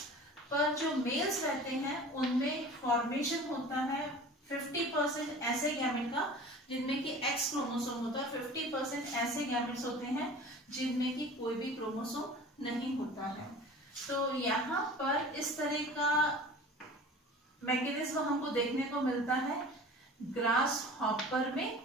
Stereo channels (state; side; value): normal; both; correlation 0.41